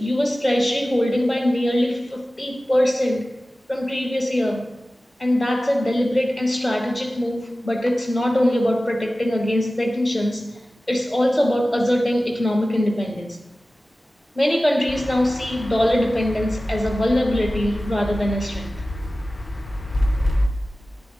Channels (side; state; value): both; normal; correlation 0.96